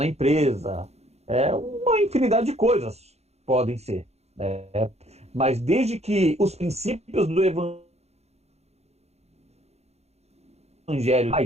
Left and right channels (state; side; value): late; left; 0.31 ms